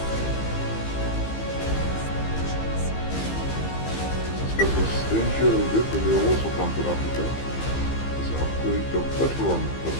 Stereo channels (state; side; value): late; right; 15 ms